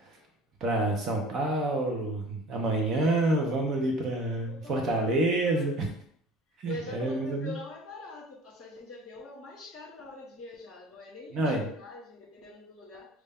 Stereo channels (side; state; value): both; normal; correlation 0.45